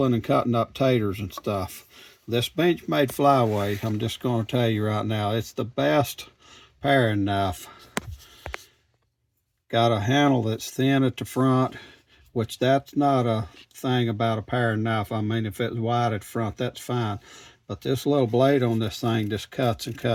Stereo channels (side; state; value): both; identical; correlation 1.00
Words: and cutting up taters and stuff. This Benchmade Flyaway, I'm just going to tell you right now, it's the best paring knife. Got a handle that's thin at the front, which that's not a thing about a paring knife. I mean, if it's wide at the front, that's fine. But this little blade on this thing just cuts and